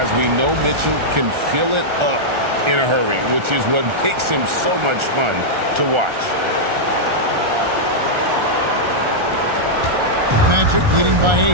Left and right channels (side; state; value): left; late; 1.4 ms